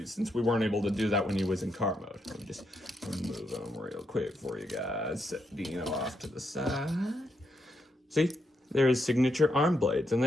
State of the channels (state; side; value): normal; both; correlation 0.80